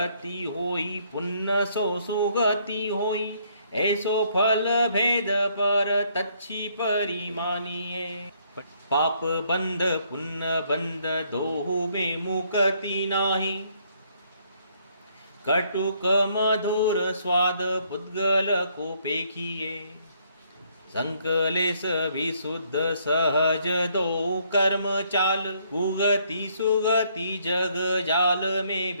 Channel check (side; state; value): both; inverted; correlation -0.68